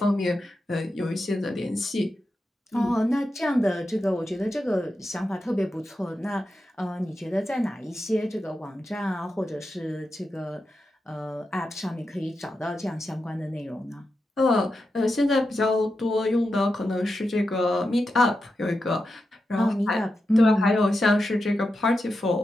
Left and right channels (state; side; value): normal; both; correlation 0.89